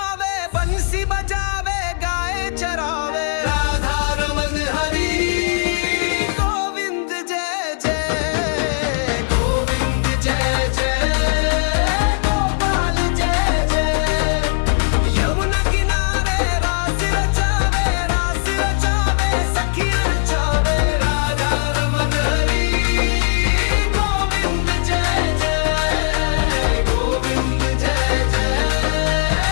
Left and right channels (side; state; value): right; silent; digital silence